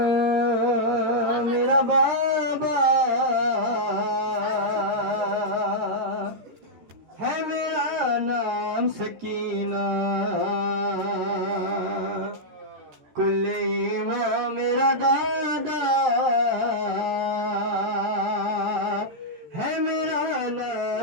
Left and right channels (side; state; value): left; late; 13 ms